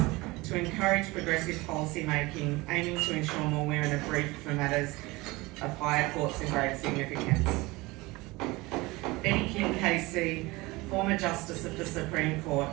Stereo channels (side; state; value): left; quieter; 22.2 dB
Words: to encourage progressive policy making, aiming to ensure more women are briefed for matters of higher courts and grave significance. Betty King KC, former Justice of the Supreme Court,